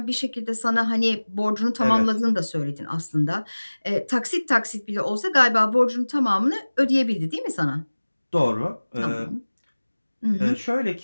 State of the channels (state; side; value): inverted; both; correlation -1.00